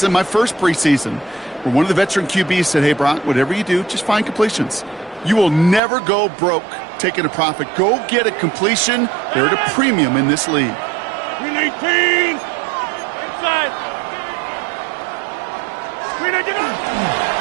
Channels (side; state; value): left; drops out; at 5.8 s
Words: my first preseason, where one of the veteran QBs said, hey, Brock, whatever you do, just find completions. You will never go broke taking a profit. Go get a completion. They're at a premium in this league. 18. Inside.